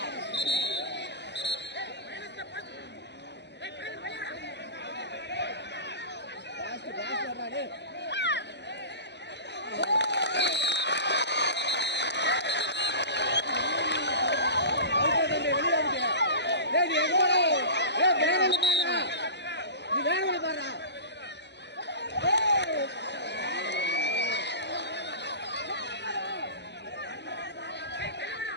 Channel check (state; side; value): late; right; 0.50 ms